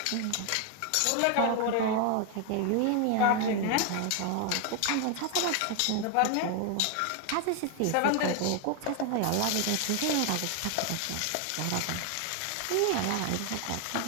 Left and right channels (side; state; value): both; different; correlation 0.00